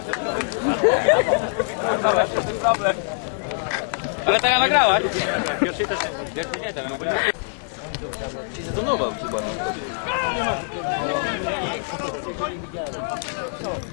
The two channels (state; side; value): silent; right; digital silence